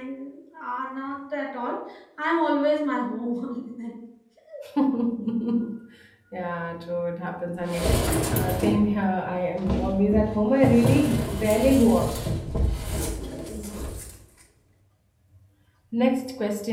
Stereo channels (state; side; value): identical; both; correlation 1.00